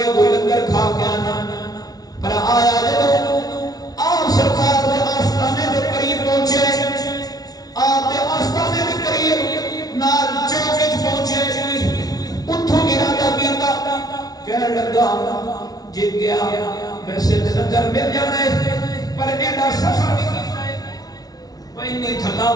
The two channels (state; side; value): late; right; 0.19 ms